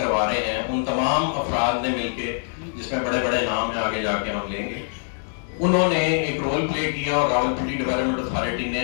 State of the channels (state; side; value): silent; right; 61 dB below the other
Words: رہے ہیں, ان تمام افراد نے مل کے جس میں بڑے بڑے نام ہیں آگے جا کے ہم لیں گے, انہوں نے ایک رول پلے کیا اور راولپنڈی ڈیولپمنٹ اتھارٹی